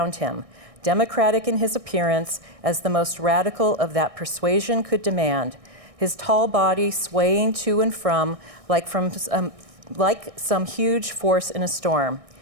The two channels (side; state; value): left; late; 1.6 ms